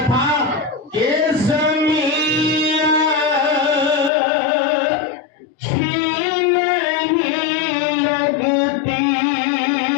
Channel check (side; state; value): right; drops out; at 4.1 s